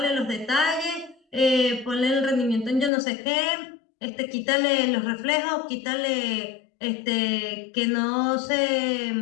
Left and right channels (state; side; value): drops out; right; at 2.9 s